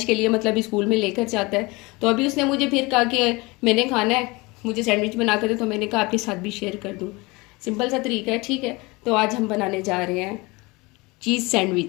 के लिए मतलब स्कूल में लेकर जाता है। तो अभी उसने मुझे फिर कहा कि मैंने खाना है, मुझे सैंडविच बना कर दे। तो मैंने कहा आपके साथ भी शेयर कर दूँ। सिंपल सा तरीका है, ठीक है। तो आज हम बनाने जा रहे हैं चीज़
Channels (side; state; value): right; quieter; 24.4 dB